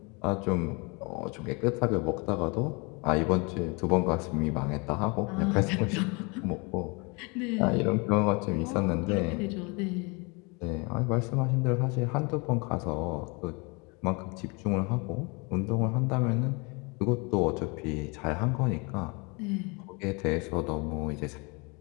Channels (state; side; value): quieter; right; 30.0 dB